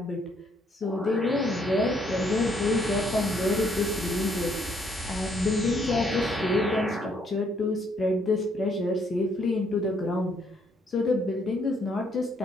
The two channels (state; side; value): normal; both; correlation 0.69